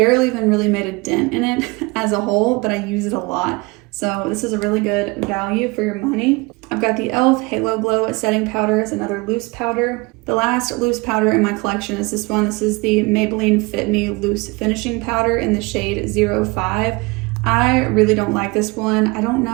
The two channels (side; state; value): left; quieter; 25.6 dB